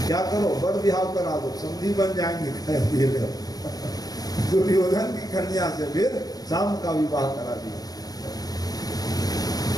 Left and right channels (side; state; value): right; late; 0.19 ms